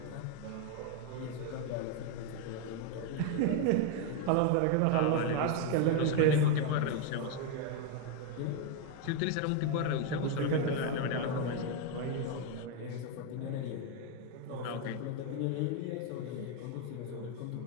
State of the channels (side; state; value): both; different; correlation 0.01